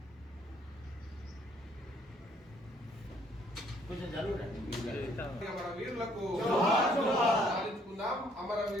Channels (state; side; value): normal; both; correlation 0.64